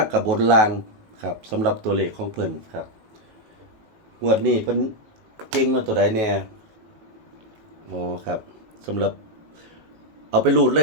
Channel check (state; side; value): late; left; 19 ms